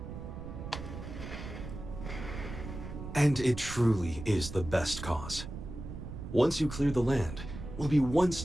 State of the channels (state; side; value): noise; right; rumble, 9 dB below the sound